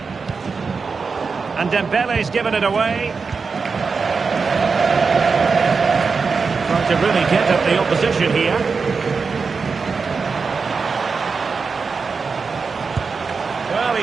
And Dembele's given it away. Trying to really get at the opposition here. Well, he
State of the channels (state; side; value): quieter; left; 4.9 dB